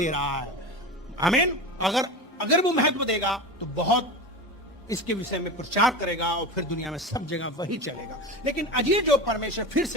रहा है। आमीन। अगर वो महत्व देगा तो बहुत इसके विषय में प्रचार करेगा और फिर दुनिया में सब जगह वही चलेगा। लेकिन अजीब जो परमेश्वर, फिर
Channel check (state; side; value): normal; both; correlation 0.27